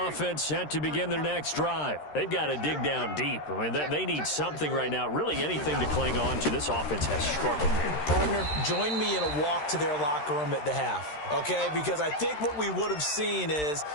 set to begin their next drive. They've got to dig down deep. I mean, they need something right now, really anything to cling on to. This offense has struggled. Partner, join me in a walk to their locker room at the half, okay? Because I think what we would have seen is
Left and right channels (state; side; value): late; right; 13 ms